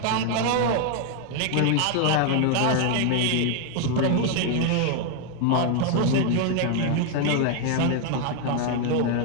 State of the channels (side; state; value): both; different; correlation 0.00